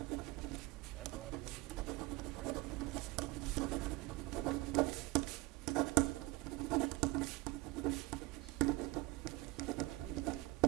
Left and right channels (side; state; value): left; quieter; 22.0 dB